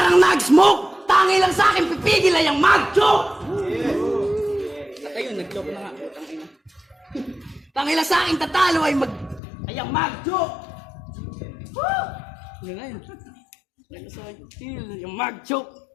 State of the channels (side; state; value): right; drops out; at 9.4 s